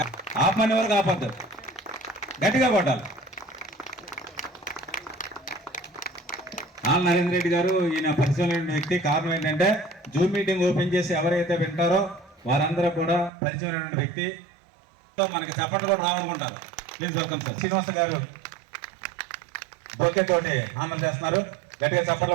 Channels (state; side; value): drops out; left; at 13.3 s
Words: ఆపమని వరకు ఆపద్దు, గట్టిగా కొట్టాలి. ఆళ్ళ నరేంద్ర రెడ్డి గారు ఈయన పరిచయం వ్యక్తి. కారణం ఏంటంటే జూమ్ మీటింగ్ ఓపెన్ చేసి ఎవరైతే వింటారో వారందరూ కూడా పరిచయం వ్యక్తి. మనకి చప్పట్లు కూడా రావాలనుకుంటారు. Please welcome sir. శ్రీనివాస గారు బొకే తోటి ఆనందం చేస్తున్నారు. గట్టిగా చప్పట్లు